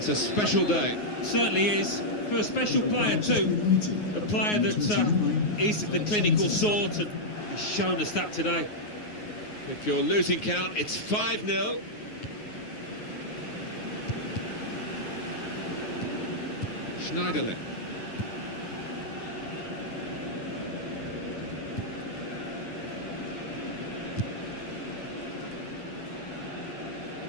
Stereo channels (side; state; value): right; late; 9.5 ms